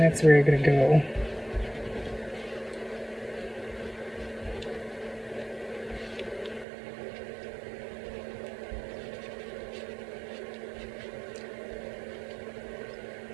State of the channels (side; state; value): left; drops out; at 6.7 s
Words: where you're gonna go.